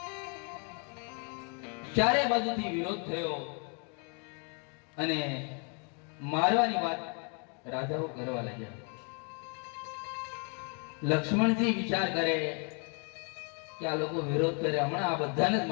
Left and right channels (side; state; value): right; quieter; 37.9 dB